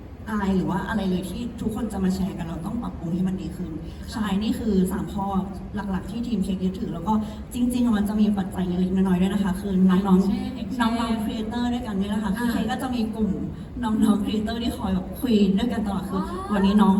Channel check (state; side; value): identical; both; correlation 1.00